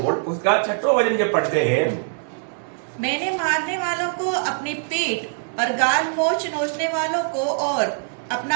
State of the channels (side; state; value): left; silent; digital silence